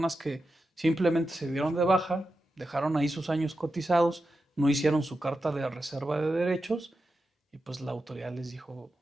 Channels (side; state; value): both; normal; correlation 0.90